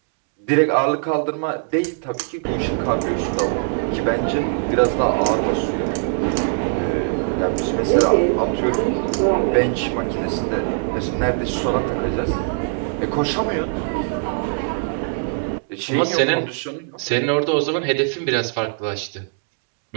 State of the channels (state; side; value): silent; left; digital silence